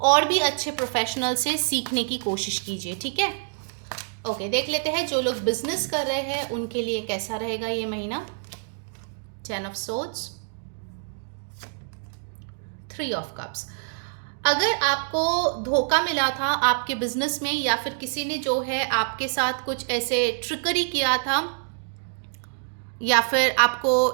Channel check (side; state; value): left; silent; digital silence